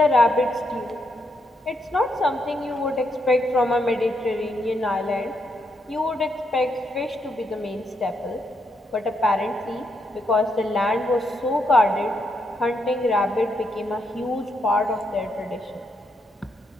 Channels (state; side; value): normal; both; correlation 0.79